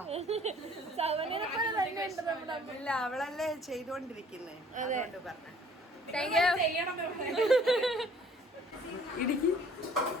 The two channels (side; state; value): both; normal; correlation 0.55